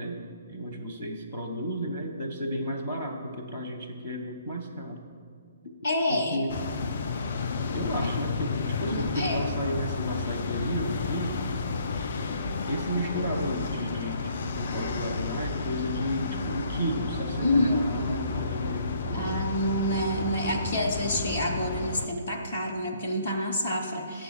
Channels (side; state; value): both; inverted; correlation -0.63